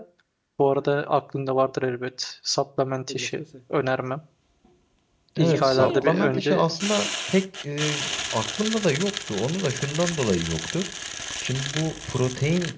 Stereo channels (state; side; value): identical; both; correlation 1.00